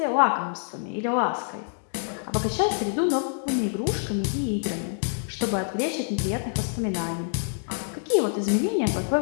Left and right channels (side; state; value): right; silent; digital silence